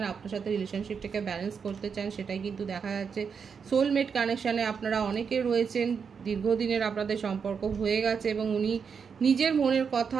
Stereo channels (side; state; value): left; quieter; 6.3 dB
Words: আপনার সাথে রিলেশনশিপটাকে ব্যালেন্স করতে চান, সেটাই কিন্তু দেখা যাচ্ছে। সোলমেট কানেকশানে আপনারা অনেকে রয়েছেন, দীর্ঘদিনের আপনাদের সম্পর্ক হয়ে গেছে এবং উনি নিজের মনের কথা